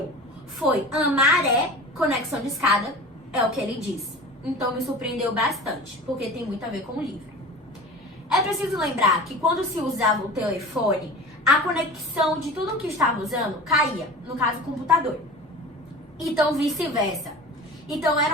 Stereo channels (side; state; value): both; normal; correlation 0.36